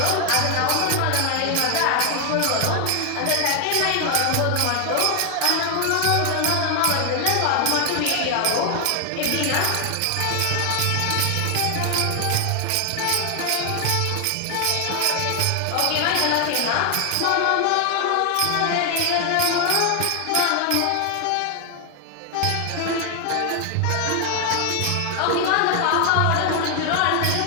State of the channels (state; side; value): different; both; correlation 0.00